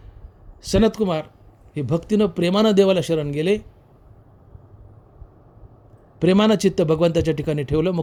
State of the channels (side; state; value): both; identical; correlation 1.00